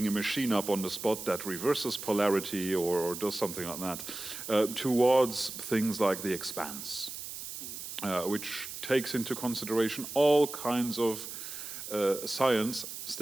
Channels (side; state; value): right; noise; hiss, 9 dB below the sound